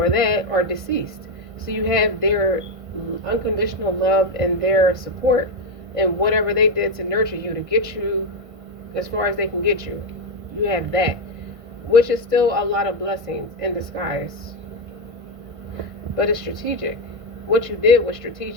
that are deceased, so you have their unconditional love and their support, and whatever they did to nurture you, to get you as far as they can get you. You have that, which is still a lot of blessings in disguise. But it's strategic. What you did was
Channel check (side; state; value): left; late; 1.5 ms